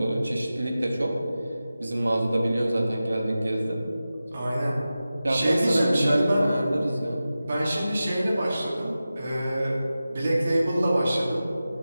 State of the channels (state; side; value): inverted; both; correlation -0.94